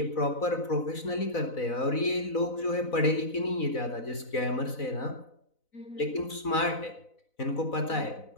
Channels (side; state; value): right; late; 4.0 ms